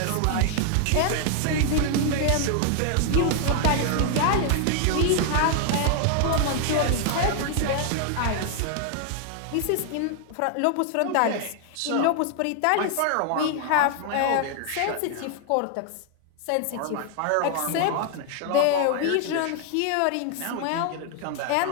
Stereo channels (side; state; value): both; different; correlation 0.00